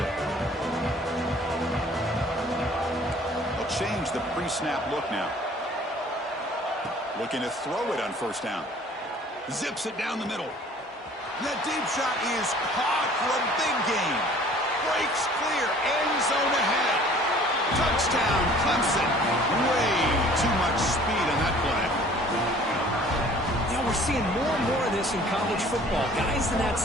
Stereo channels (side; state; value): both; normal; correlation 0.52